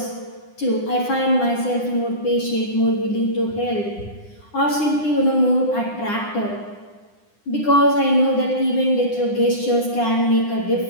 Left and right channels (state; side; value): late; right; 9.9 ms